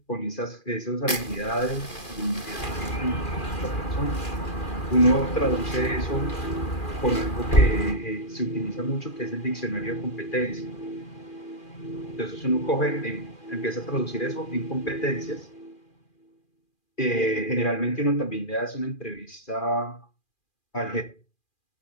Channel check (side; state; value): right; late; 2.4 ms